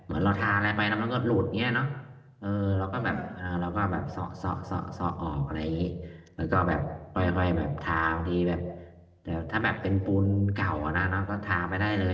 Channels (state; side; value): identical; both; correlation 1.00